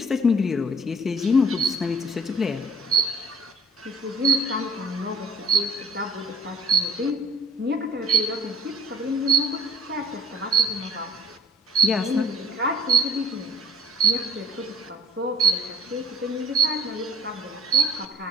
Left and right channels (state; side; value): normal; both; correlation 0.48